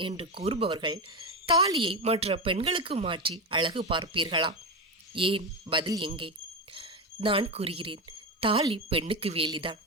என்று கூறுபவர்கள் தாலியை மற்ற பெண்களுக்கு மாற்றி அழகு பார்ப்பீர்களா? ஏன்? பதில் எங்கே? நான் கூறுகிறேன், தாலி பெண்ணுக்கு வேலிதான்.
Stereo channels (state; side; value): normal; both; correlation 0.15